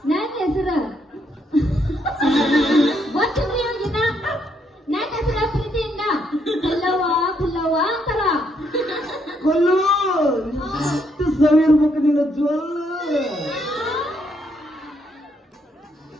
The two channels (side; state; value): both; normal; correlation 0.74